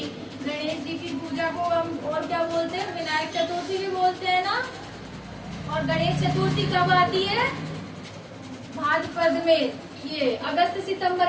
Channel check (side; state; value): both; identical; correlation 1.00